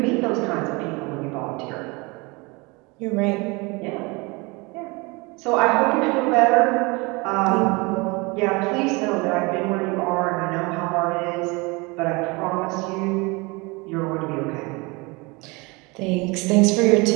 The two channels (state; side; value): quieter; left; 26.4 dB